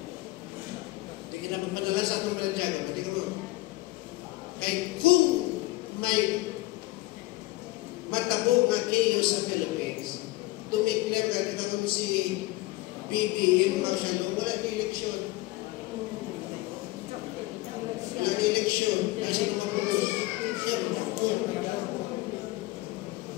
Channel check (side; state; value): right; quieter; 19.4 dB